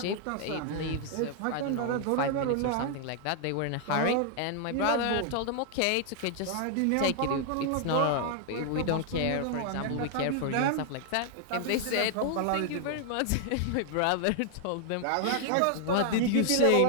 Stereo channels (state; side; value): different; both; correlation 0.00